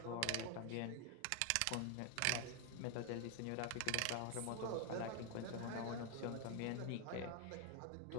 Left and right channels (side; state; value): both; different; correlation 0.01